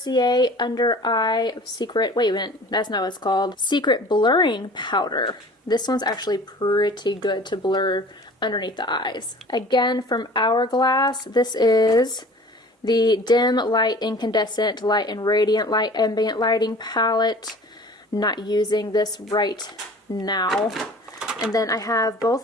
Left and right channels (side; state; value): both; normal; correlation 0.45